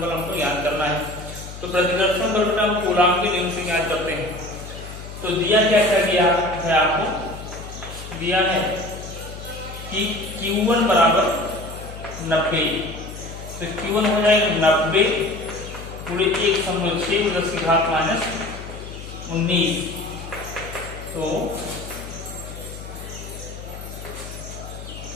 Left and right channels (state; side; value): noise; left; hum, 12 dB below the sound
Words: बल हमको ज्ञात करना है। तो प्रतिकर्षण बल बेटा हम कूलाम के नियम से ज्ञात करते हैं। तो दिया क्या गया है आपको, दिया है कि Q1 बराबर 90, तो Q1 हो जाएगा 90 पूरे 1/6 10⁻19। तो